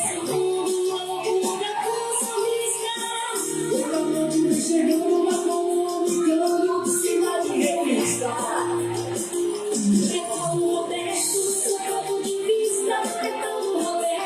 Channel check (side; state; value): both; identical; correlation 1.00